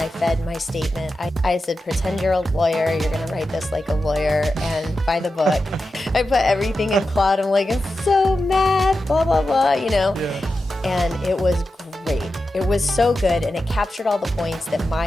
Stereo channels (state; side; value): normal; both; correlation 0.91